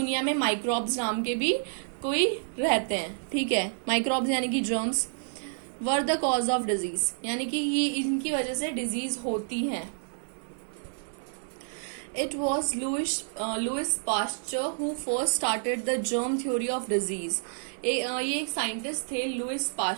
में माइक्रोब्स नाम के भी कोई रहते हैं. ठीक है, माइक्रोब्स यानी कि germs were the cause of disease, यानी कि ये इनकी वजह से डिजीज होती हैं. It was Louis Pasteur who first started the germ theory of disease. ये एक साइंटिस्ट थे लुइस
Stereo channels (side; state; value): left; silent; 56 dB below the other